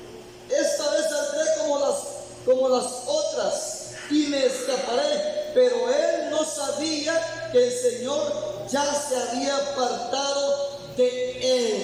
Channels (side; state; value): both; identical; correlation 1.00